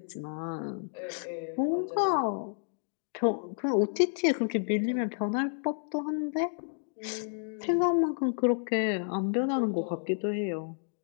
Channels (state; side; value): silent; right; digital silence